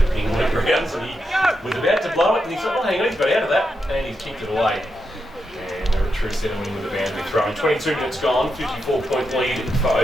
the ping went round, so he was about to blow it, and he thought, oh, hang on, he's got out of that, and he's kicked it away. And they're a true centre winning with the boundary throw. 22 minutes gone, 54-point lead for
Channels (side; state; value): both; normal; correlation 0.85